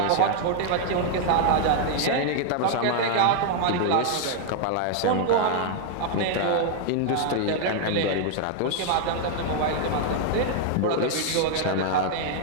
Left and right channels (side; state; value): both; different; correlation 0.00